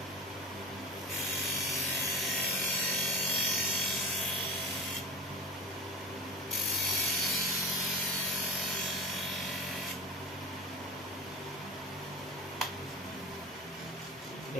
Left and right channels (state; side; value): normal; both; correlation 0.32